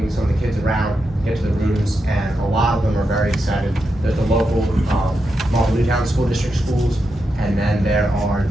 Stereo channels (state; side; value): normal; both; correlation 0.86